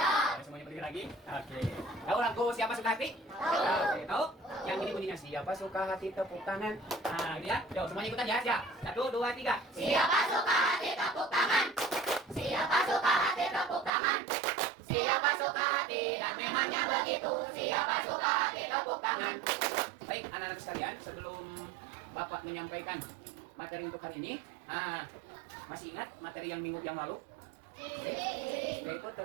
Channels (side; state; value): left; drops out; at 13.9 s